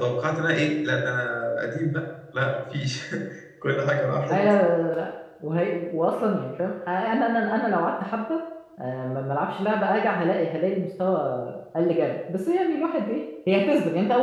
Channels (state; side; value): identical; both; correlation 1.00